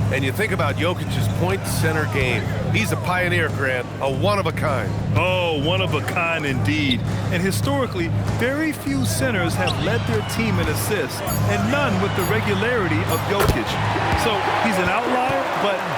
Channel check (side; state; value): both; identical; correlation 1.00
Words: And you think about Jokic's point center game. He's a pioneer, Grant, a one-of-a-kind. Oh, one of a kind indeed. And historically, very few centers have led their team in assists, and none with the regularity of Jokic. So he's an outlier, but